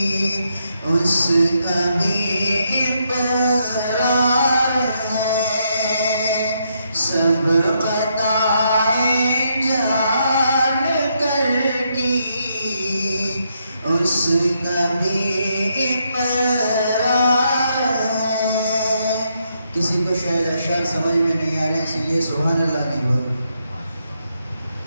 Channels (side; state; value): both; inverted; correlation -0.77